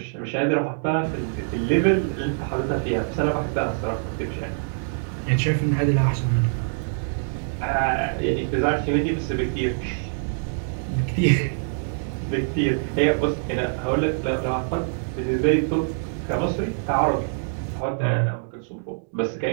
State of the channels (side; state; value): left; silent; digital silence